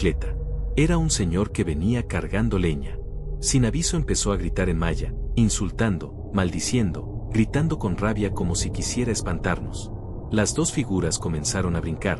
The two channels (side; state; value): both; identical; correlation 1.00